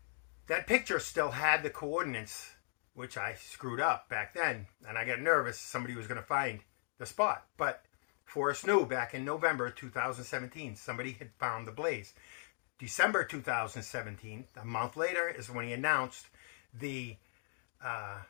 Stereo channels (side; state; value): right; silent; 52 dB below the other